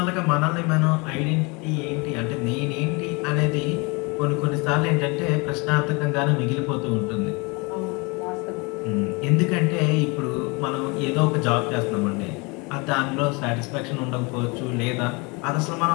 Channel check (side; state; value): right; quieter; 28.6 dB